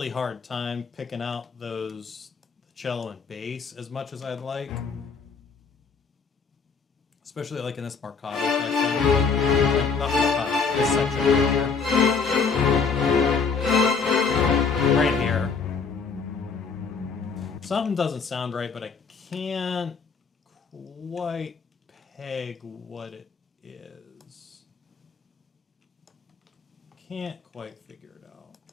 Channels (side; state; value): right; quieter; 5.3 dB